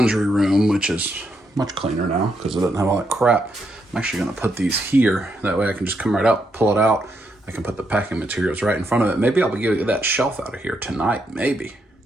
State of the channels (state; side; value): normal; both; correlation 0.79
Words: room, which is much cleaner now because it doesn't have all that crap. I'm actually going to put these here. That way I can just come right out, pull it out. I can put the packing materials right in front of it. Maybe I'll be getting that shelf out of here tonight, maybe.